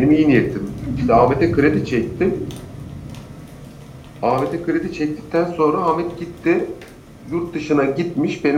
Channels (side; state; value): both; identical; correlation 1.00